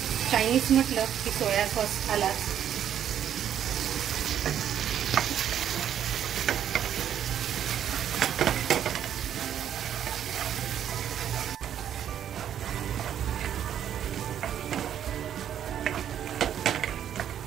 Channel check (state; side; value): quieter; left; 9.9 dB